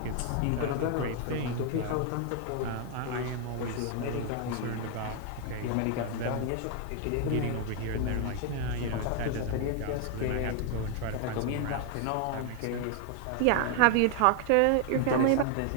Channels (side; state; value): both; different; correlation 0.00